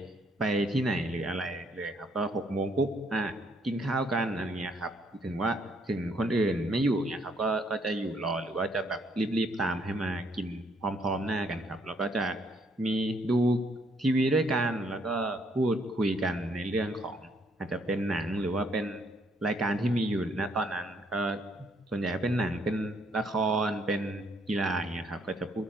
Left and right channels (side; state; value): both; normal; correlation 0.69